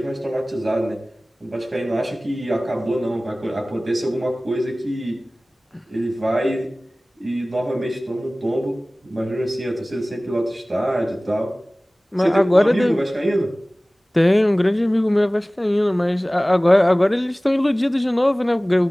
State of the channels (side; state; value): both; normal; correlation 0.98